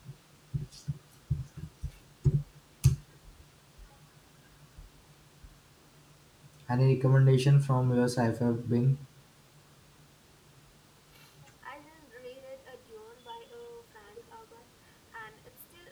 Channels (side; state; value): both; identical; correlation 1.00